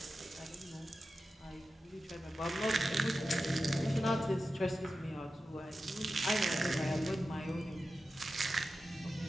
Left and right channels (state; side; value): normal; both; correlation 0.92